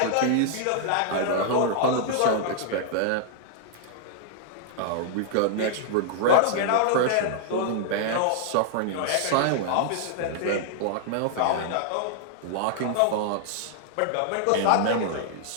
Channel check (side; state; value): both; different; correlation -0.01